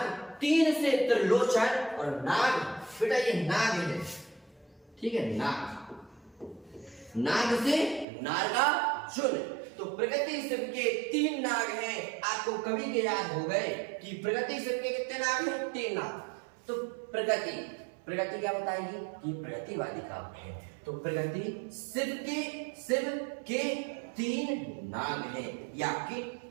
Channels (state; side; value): drops out; left; at 8.1 s